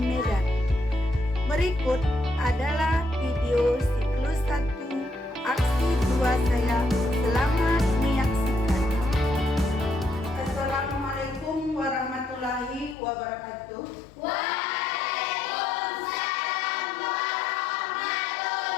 Berikut adalah video siklus 1 aksi 2 saya. Selamat menyaksikan. Assalamualaikum warahmatullahi wabarakatuh. Waalaikumsalam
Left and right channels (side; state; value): right; drops out; at 13.0 s